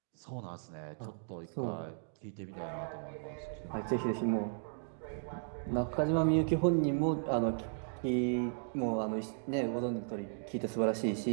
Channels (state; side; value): silent; left; digital silence